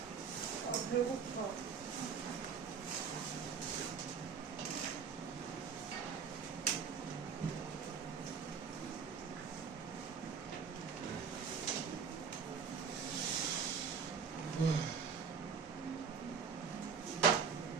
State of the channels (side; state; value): left; quieter; 6.2 dB